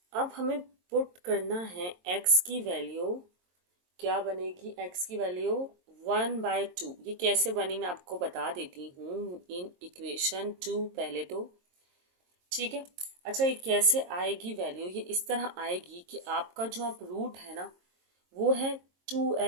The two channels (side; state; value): left; late; 22 ms